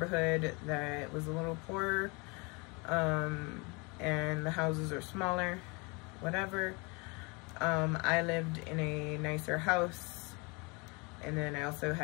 that was a little poorer, and the houses are smaller, whatever. I lived in a nicer house. And then I also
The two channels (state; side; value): quieter; right; 29.6 dB